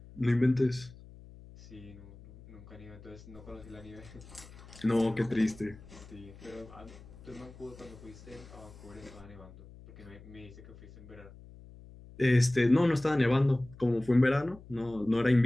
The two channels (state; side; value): noise; left; hum, 19 dB below the sound